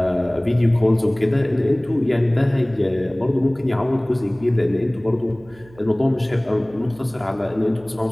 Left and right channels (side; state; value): right; noise; hum, 25 dB below the sound